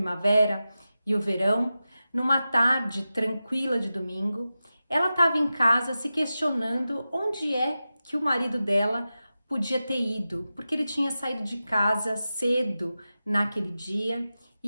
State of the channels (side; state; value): both; inverted; correlation -0.93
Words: e o verão, numa tarde tranquila de domingo, ela estava em casa se questionando onde é que o marido dela podia ter ido, porque ele tinha saído de casa cedo naquele dia